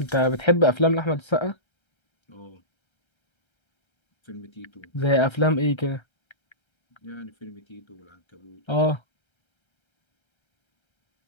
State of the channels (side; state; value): right; late; 1.3 ms